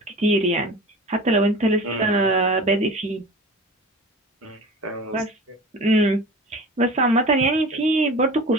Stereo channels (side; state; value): both; normal; correlation 0.37